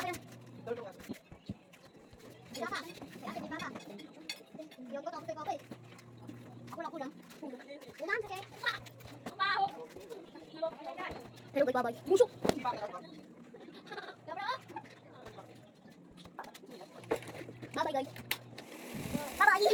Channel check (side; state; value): both; identical; correlation 1.00